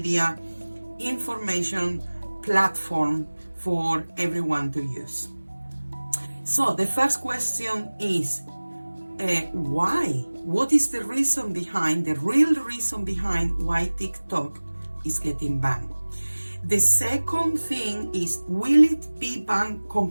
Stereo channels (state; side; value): inverted; both; correlation -1.00